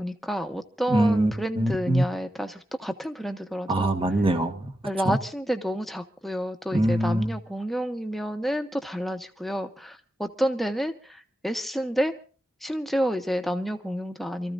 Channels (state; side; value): normal; both; correlation 0.90